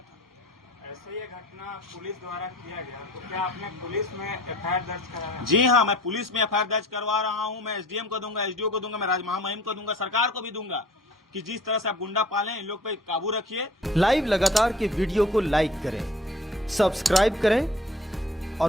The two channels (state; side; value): normal; both; correlation 0.48